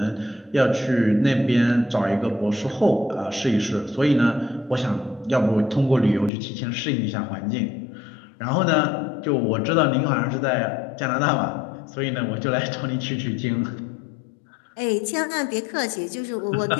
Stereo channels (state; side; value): drops out; right; at 6.3 s